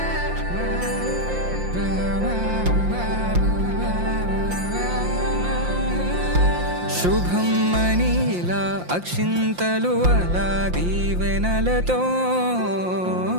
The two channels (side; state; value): left; late; 5.7 ms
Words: శుభం మనీలా అక్షింతలు అలా దీవెనలతో